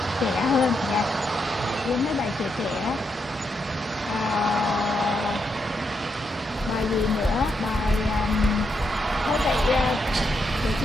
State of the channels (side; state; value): both; normal; correlation 0.81